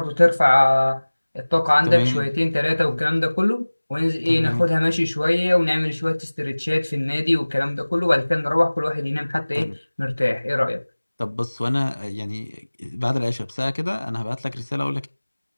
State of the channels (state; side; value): inverted; both; correlation -1.00